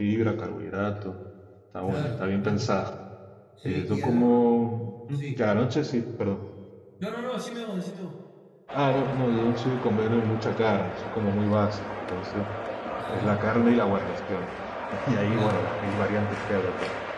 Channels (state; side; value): identical; both; correlation 1.00